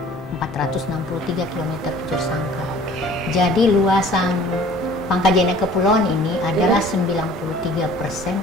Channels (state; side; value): normal; both; correlation 0.50